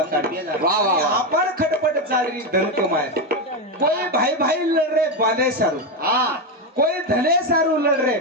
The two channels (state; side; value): normal; both; correlation 0.10